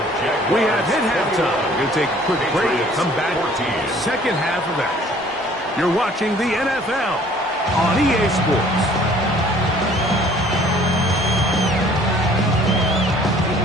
Jaguars. We have hit halftime. We're going to take a quick break and come back. Second half of action. You're watching the NFL on EA Sports.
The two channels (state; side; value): normal; both; correlation 0.55